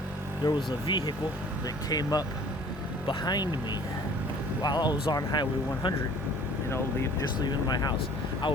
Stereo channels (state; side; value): normal; both; correlation 0.51